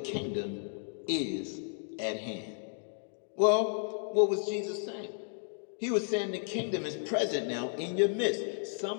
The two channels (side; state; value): right; silent; 56 dB below the other